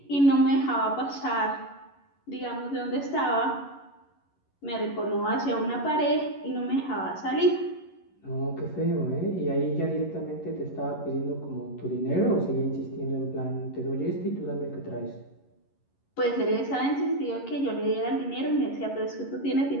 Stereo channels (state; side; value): late; right; 11 ms